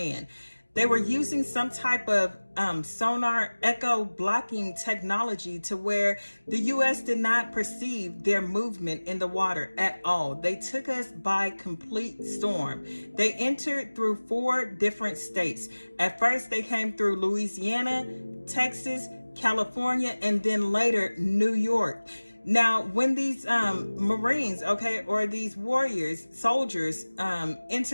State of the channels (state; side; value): inverted; both; correlation -1.00